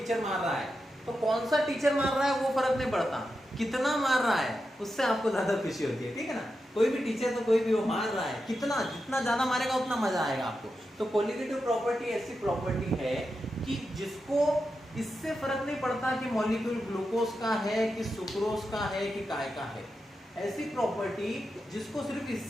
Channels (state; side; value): normal; both; correlation 0.88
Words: मार रहा है तो कौन सा टीचर मार रहा है वो फर्क नहीं पड़ता, कितना मार रहा है उससे आपको ज्यादा खुशी होती है. ठीक है ना, कोई भी टीचर तो कोई भी वो मार रहा है, कितना, जितना ज्यादा मारेगा उतना मजा आएगा आपको. तो कोलिगेटिव प्रॉपर्टी ऐसी प्रॉपर्टी है कि जिसको इससे फर्क नहीं पड़ता कि मॉलिक्यूल ग्लूकोज का है कि सुक्रोज का है कि काय का है. ऐसी प्रॉपर्टी जिसको सिर्फ